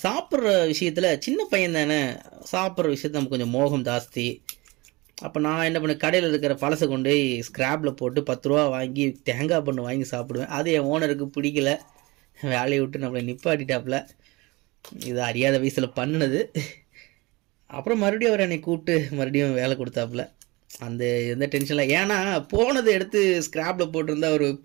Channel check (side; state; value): left; quieter; 23.5 dB